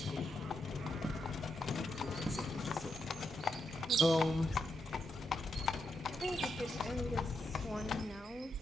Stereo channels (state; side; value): normal; both; correlation 0.83